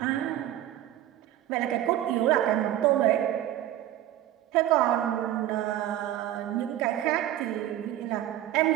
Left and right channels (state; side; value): quieter; left; 12.8 dB